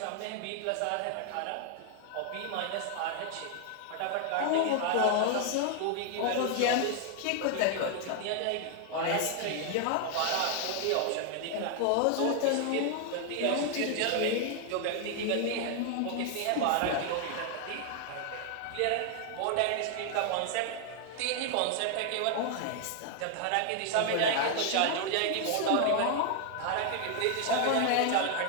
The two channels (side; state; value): both; different; correlation 0.00